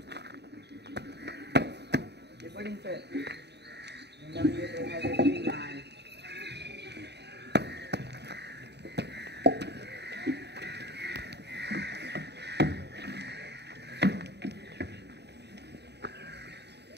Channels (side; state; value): left; late; 0.49 ms